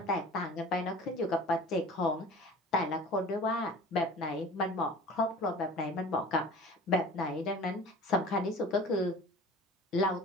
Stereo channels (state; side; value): normal; both; correlation 0.42